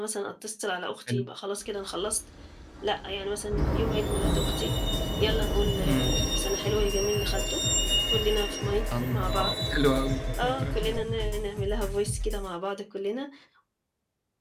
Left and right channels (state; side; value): identical; both; correlation 1.00